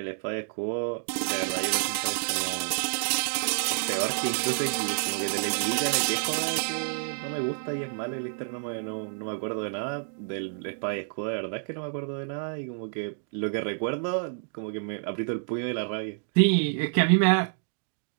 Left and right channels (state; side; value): silent; left; digital silence